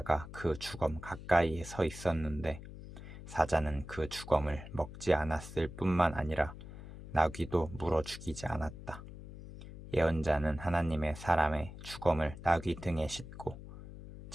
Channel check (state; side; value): noise; left; hum, 13 dB below the sound